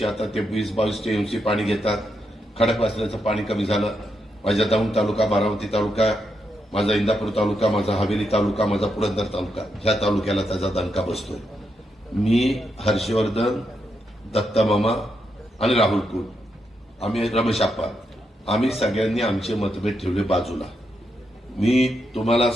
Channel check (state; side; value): normal; both; correlation 0.82